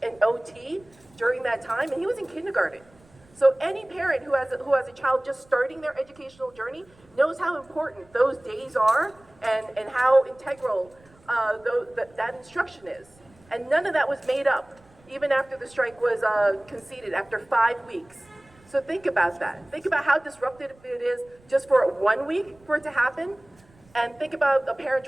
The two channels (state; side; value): noise; right; rumble, 29 dB below the sound